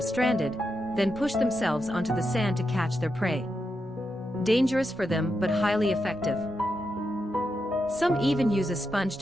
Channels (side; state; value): both; normal; correlation 0.86